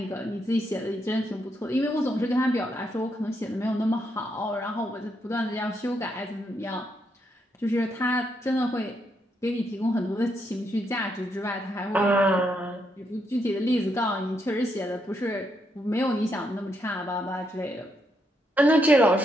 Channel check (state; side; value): normal; both; correlation 0.78